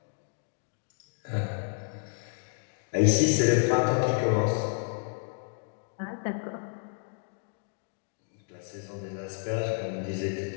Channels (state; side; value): silent; right; 57 dB below the other